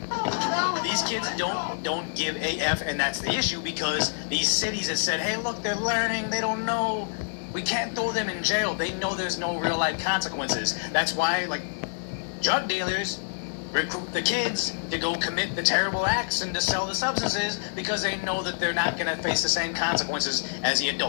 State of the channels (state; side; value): silent; right; digital silence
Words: These kids don't give a F, and that's the issue because these cities have said, hey, look, they're learning. They don't know. We can't throw them in jail. They know there's no real life consequences. That's why, like, drug dealers recruit the kids to go commit the terrible acts and to sell the substances because they know that they're not going to face the same consequences as the